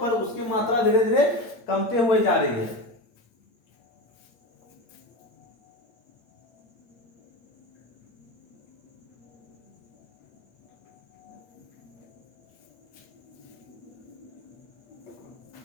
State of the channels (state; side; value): late; right; 8.6 ms